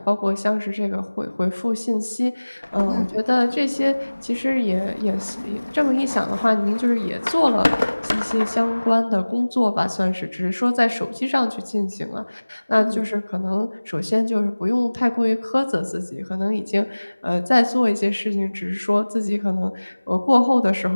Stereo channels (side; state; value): both; inverted; correlation -1.00